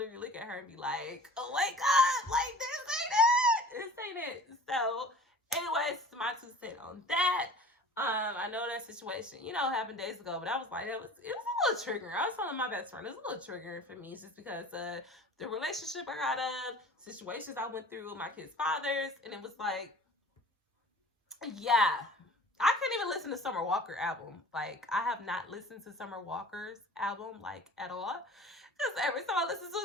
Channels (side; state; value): both; normal; correlation 0.44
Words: look at her and be like, oh my God, like, this ain't it. So, anyways, my 2 cents on that. I know that situation, you know, happened days ago, but I was like, it was a little triggering. I was telling my best friend, it was a little triggering for me, just because the relationship I got of, situations I went through with my kids' fathers, and it was like, yeah, I couldn't even listen to Summer Walker album. Like, I have not listened to Summer Walker's album, like, at all. Because every time I listen to